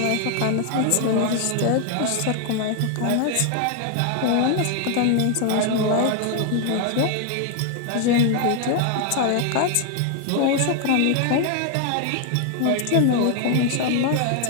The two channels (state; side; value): different; both; correlation 0.00